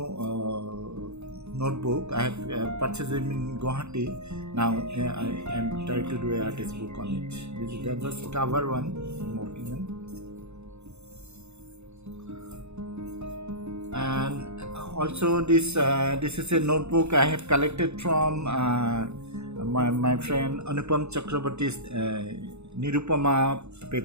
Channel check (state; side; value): late; left; 0.81 ms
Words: notebook. I have purchased it in Guwahati. Now I am trying to do an artist book on it. This is the just cover one I'm working on. And also this is a notebook I have collected from my friend Anupam Chakraborty's Nirupama